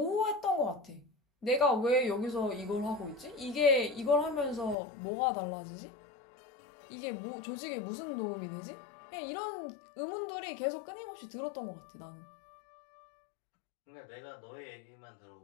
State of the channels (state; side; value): drops out; right; at 4.8 s